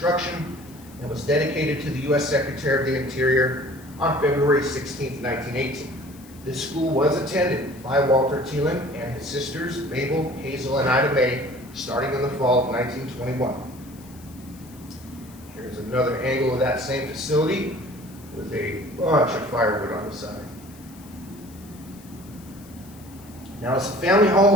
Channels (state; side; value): noise; left; hiss, 23 dB below the sound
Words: and was dedicated to the U.S. Secretary of the Interior on February 16th, 1918. This school was attended by Walter Teeland and his sisters, Mabel, Hazel, and Ida Mae, starting in the fall of 1921. Here's another angle of that same facility with a bunch of firewood on the side. Now, as the family home